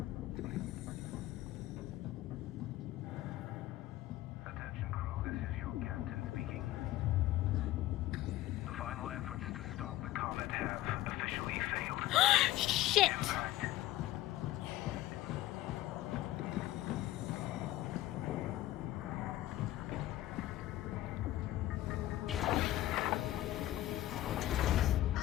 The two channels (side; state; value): right; quieter; 15.4 dB